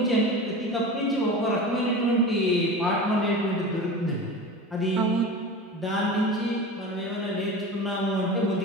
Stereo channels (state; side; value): normal; both; correlation 0.32